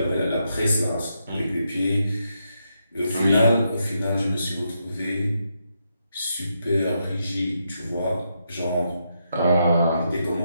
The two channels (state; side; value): inverted; both; correlation -0.81